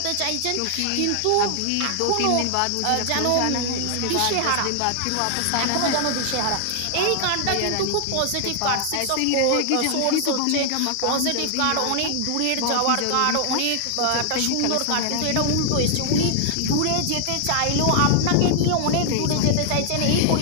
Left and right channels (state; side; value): different; both; correlation 0.00